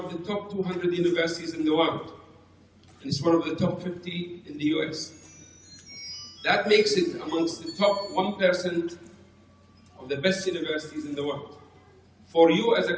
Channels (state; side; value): identical; both; correlation 1.00